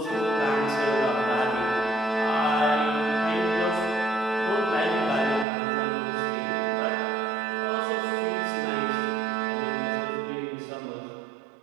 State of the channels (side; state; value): left; drops out; at 5.5 s